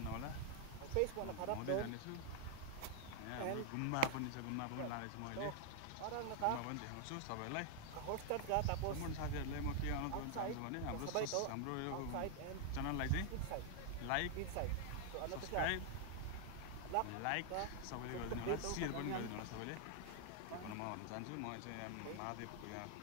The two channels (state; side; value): different; both; correlation 0.00